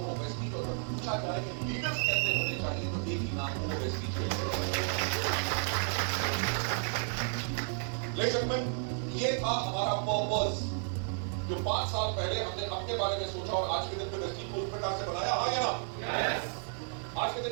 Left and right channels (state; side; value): silent; left; 56 dB below the other